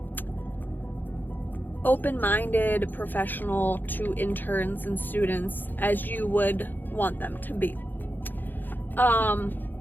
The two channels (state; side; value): late; right; 0.089 ms